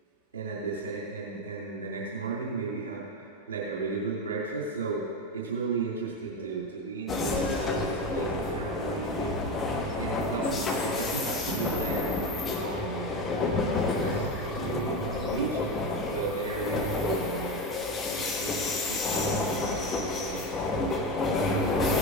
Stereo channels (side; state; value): both; normal; correlation 0.17